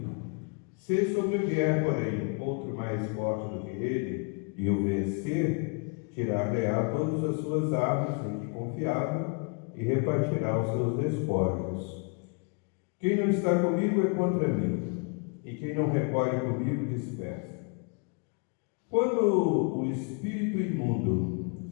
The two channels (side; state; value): right; quieter; 35.4 dB